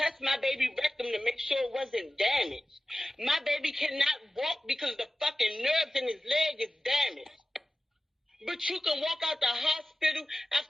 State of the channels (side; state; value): both; normal; correlation 0.95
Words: my baby rectum to make sure it wasn't damaged. My baby cannot walk because the fucking nerves in his leg is damaged. But you can walk out the hospital